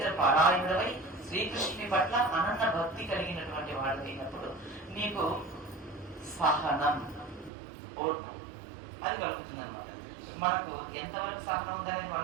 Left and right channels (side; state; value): left; drops out; at 7.5 s